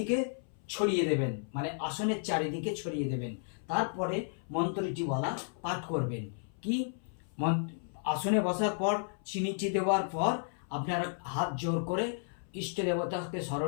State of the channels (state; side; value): silent; right; 56 dB below the other